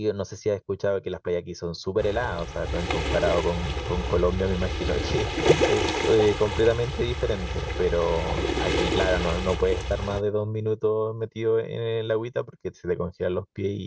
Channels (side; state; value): both; identical; correlation 1.00